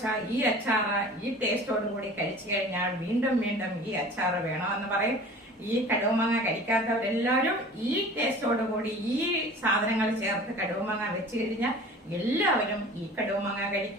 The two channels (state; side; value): normal; both; correlation 0.42